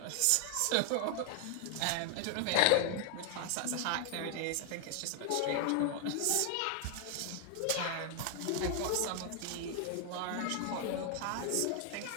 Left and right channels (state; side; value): different; both; correlation 0.00